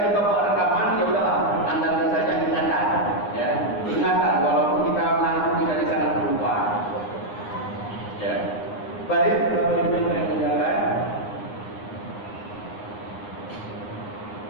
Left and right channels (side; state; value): right; late; 9.7 ms